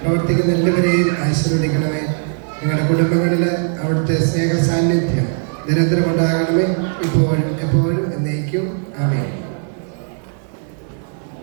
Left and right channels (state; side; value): silent; left; 55 dB below the other